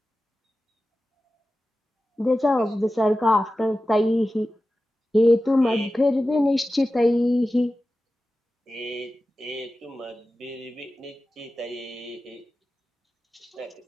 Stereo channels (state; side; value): normal; both; correlation 0.94